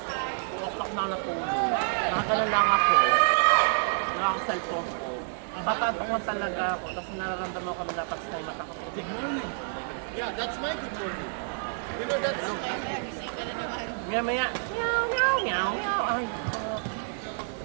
o'clock na ako natulog. Nakagalan lang ako, nakaka-cellphone ko. Batantok lang talaga ako, tapos nararamdaman ko na dapat sa mata ko. Yeah, that's my good morning. You know, that's... Kaya gising ka na naman. Maya, meow. Ay,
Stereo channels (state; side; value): silent; left; 59 dB below the other